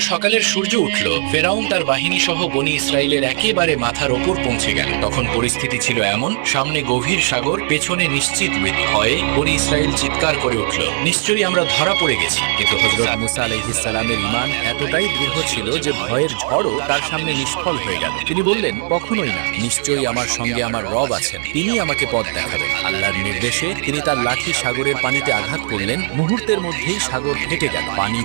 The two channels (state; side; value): silent; left; 61 dB below the other